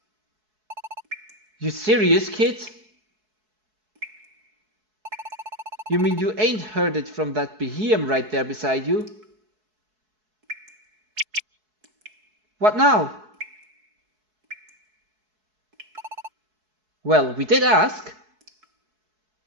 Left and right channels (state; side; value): late; left; 4.7 ms